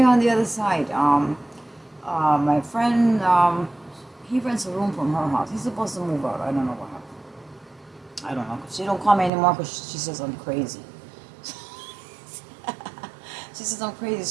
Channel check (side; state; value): left; drops out; at 9.3 s